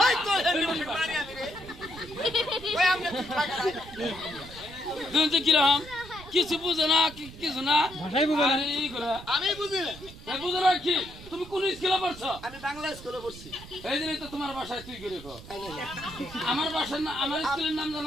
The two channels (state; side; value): noise; right; rumble, 16 dB below the sound